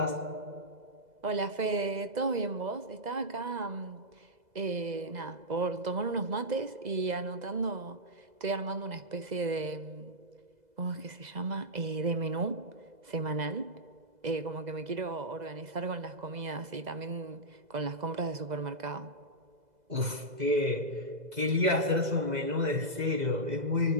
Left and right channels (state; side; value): late; left; 2.0 ms